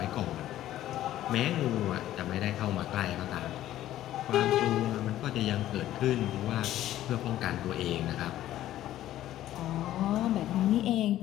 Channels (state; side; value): quieter; right; 13.4 dB